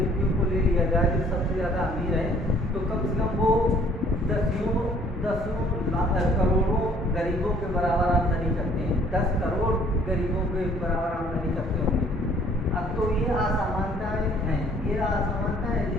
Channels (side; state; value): both; normal; correlation 0.58